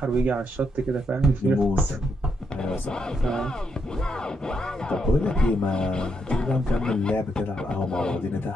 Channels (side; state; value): both; normal; correlation 0.79